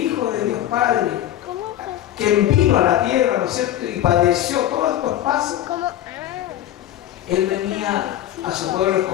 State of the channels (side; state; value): right; quieter; 12.5 dB